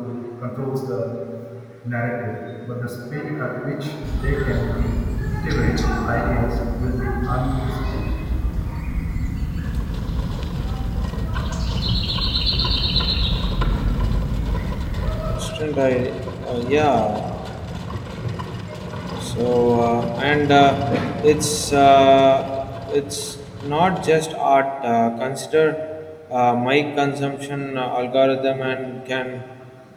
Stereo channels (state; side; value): identical; both; correlation 1.00